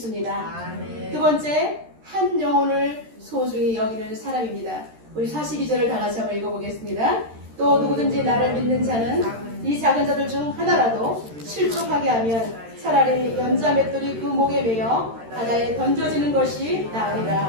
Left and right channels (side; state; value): left; late; 13 ms